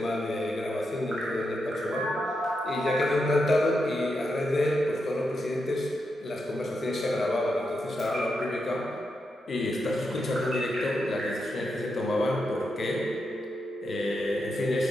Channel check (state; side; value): normal; both; correlation 0.85